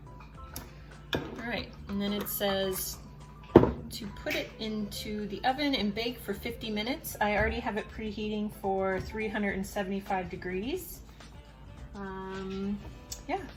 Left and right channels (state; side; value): identical; both; correlation 1.00